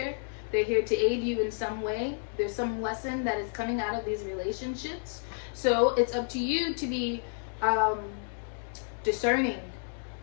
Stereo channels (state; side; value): silent; right; digital silence